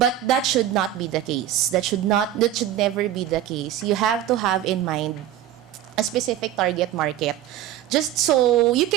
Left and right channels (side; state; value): left; quieter; 11.9 dB